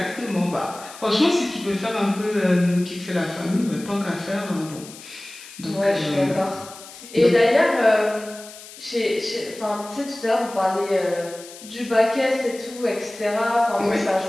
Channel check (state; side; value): noise; left; hiss, 17 dB below the sound